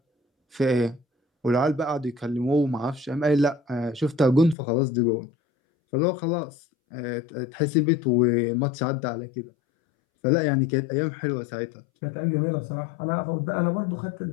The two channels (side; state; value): right; drops out; at 4.5 s